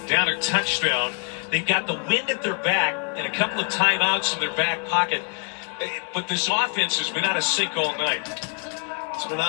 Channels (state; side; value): quieter; right; 38.9 dB